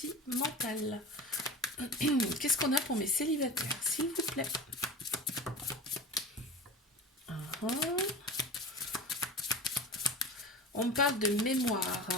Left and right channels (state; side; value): normal; both; correlation 0.33